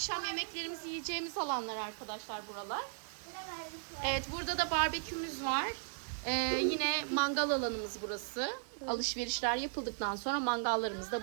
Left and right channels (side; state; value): left; silent; digital silence